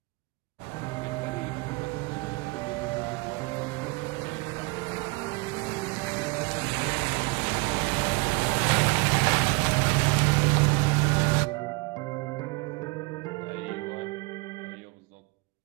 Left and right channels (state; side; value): quieter; left; 26.7 dB